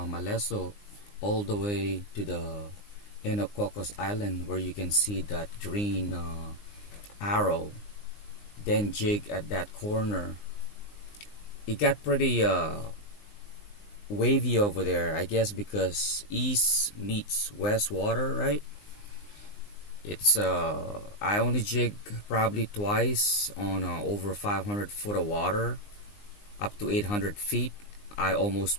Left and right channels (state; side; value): late; right; 19 ms